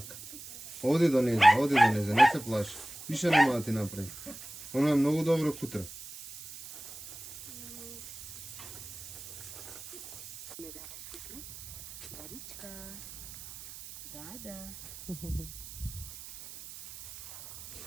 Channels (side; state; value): right; noise; hiss, 13 dB below the sound